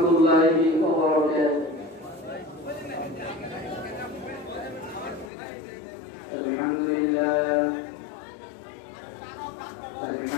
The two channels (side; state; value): right; drops out; at 5.3 s